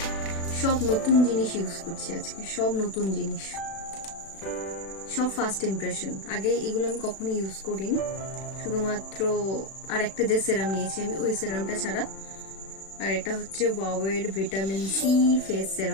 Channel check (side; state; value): right; late; 36 ms